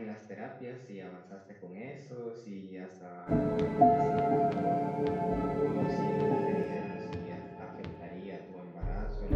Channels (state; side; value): identical; both; correlation 1.00